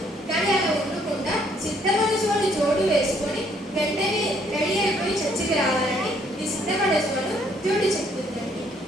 కానీ అలా ఉండకుండా సిద్ధమనసువాడు జోడు వేసుకొని వెంటనే రెడీ అయిపోయి చర్చికి రావాలని ఈ సిద్ధమనసువాడు జోడు చెప్తుందండి.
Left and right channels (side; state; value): both; normal; correlation 0.66